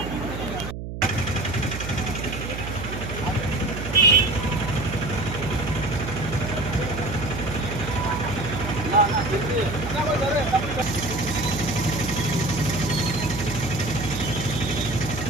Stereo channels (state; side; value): noise; right; hum, 7 dB below the sound